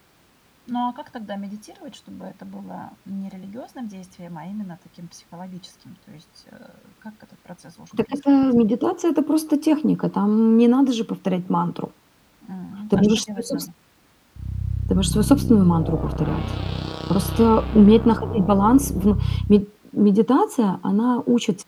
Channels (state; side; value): identical; both; correlation 1.00